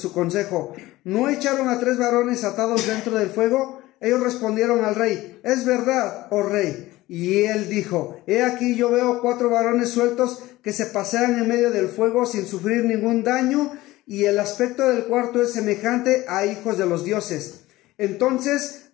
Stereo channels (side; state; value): right; quieter; 17.8 dB